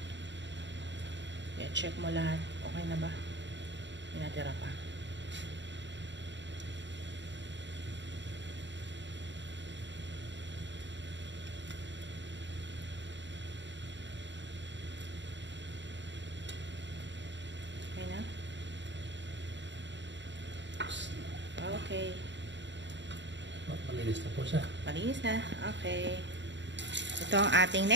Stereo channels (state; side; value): late; left; 0.53 ms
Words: Yeah, check mo lahat. Okay na ba? May natira pa. Okay na? Okay. Malinis na po siya. Malinis na. Okay. Ito ang ating